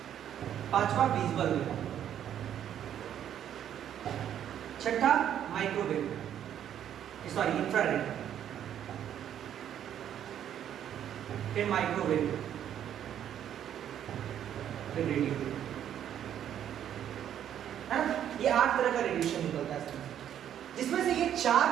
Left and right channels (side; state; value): left; quieter; 10.1 dB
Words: पांचवा विजिबल रे, छठा माइक्रोवेव सॉरी इंफ्रारेड, फिर माइक्रोवेव, फिर रेडियो, है ना? ये 8 तरह का रेडिएशन निकलता है, जिसमें से ये 4